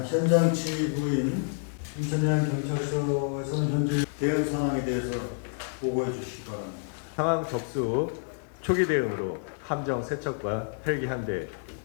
현장 지휘부인 인천해양경찰서에서는 현재 대응 상황에 대해서 보고해 주시기 바랍니다. 상황 접수 후 초기 대응으로 함정 세척과 헬기 1대,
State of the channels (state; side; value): silent; right; 59 dB below the other